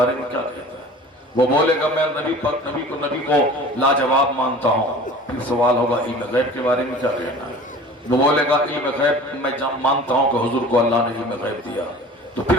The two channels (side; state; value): both; normal; correlation 0.42